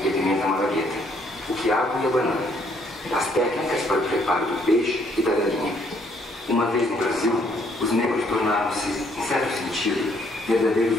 e a pimenta malagueta, o quiabo e a banana, as técnicas para o preparo do peixe e da galinha. Uma vez no Brasil, os negros tornaram-se, em certo sentido, verdadeiros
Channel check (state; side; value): normal; both; correlation 0.67